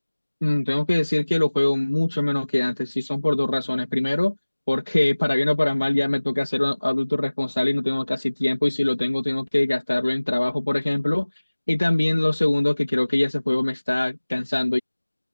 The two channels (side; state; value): both; inverted; correlation -1.00